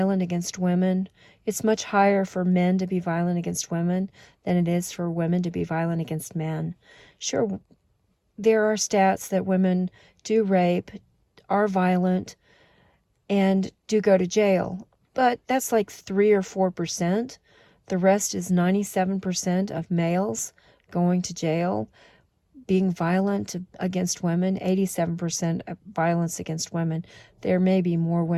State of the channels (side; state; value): both; identical; correlation 1.00